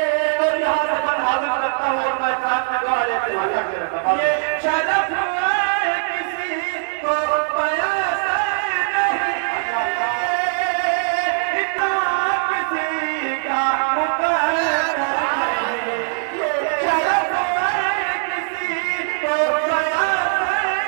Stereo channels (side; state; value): left; silent; digital silence